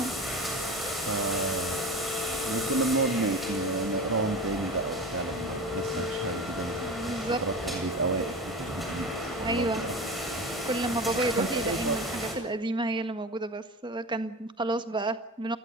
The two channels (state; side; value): normal; both; correlation 0.30